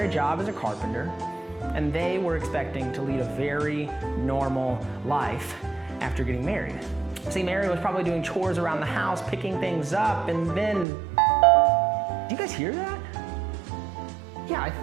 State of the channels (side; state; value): left; drops out; at 10.9 s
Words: job as a carpenter, and they were expecting to lead a very normal life after getting married. See, Mary was probably doing chores around the house, picking things up, and then... Do you guys hear that? Yeah, I